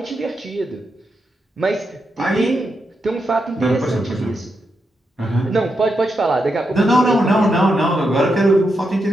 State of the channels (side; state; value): both; normal; correlation 0.84